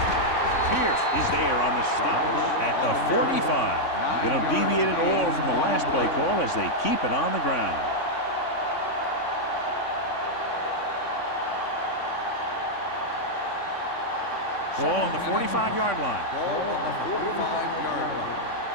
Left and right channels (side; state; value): right; late; 3.5 ms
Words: Pierce is there on the stop at the 45. They don't deviate at all from the last play call as they keep it on the ground. Ball on the 45-yard line. Ball on the 45-yard line.